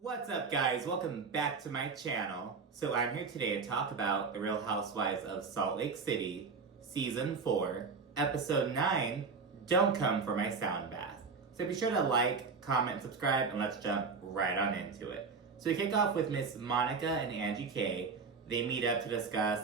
What's up, guys? Welcome back to my channel. So I'm here today to talk about The Real Housewives of Salt Lake City, Season 4, Episode 9, Don't Come for My Sound Bath. So be sure to like, comment, and subscribe, and let's jump right on into it. So we kick off with Miss Monica and Angie K. They meet up to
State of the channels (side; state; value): left; quieter; 4.9 dB